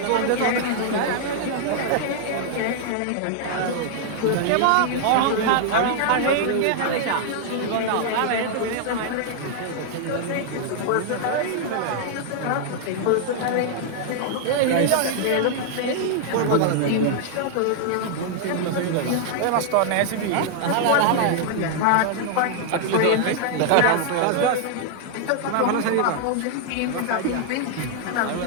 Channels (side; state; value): both; different; correlation 0.00